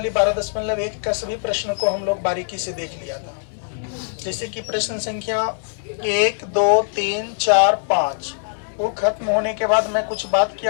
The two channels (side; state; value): right; silent; digital silence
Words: 12.1 का सभी प्रश्न को हम लोग बारीकी से देख लिया था। जैसे कि प्रश्न संख्या 1, 2, 3, 4, 5 वो खत्म होने के बाद मैं कुछ बात